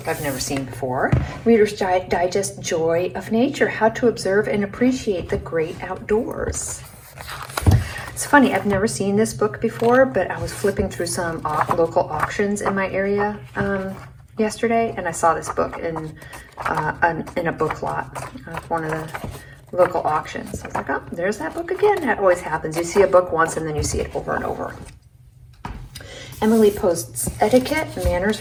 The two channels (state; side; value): identical; both; correlation 1.00